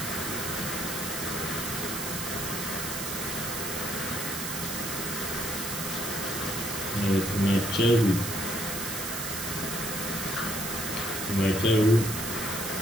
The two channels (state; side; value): noise; right; hiss, 4 dB below the sound